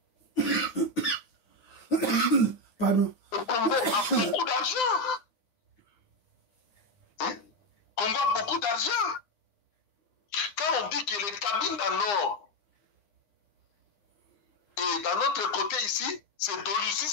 Pardon. Le Congo a beaucoup d'argent. Hein? Le Congo a beaucoup d'argent. Quand on dit que les Cabinda Nord et d'un autre côté ici, c'est Doluzi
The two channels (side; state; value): right; late; 9.8 ms